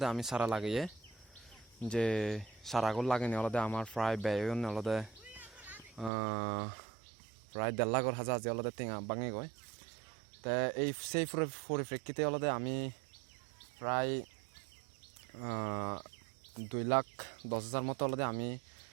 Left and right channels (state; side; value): drops out; left; at 6.1 s